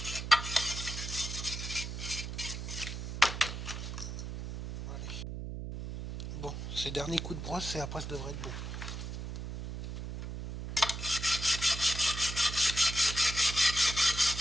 Ces derniers coups de brosse et après ça devrait être bon.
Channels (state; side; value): noise; right; hum, 6 dB below the sound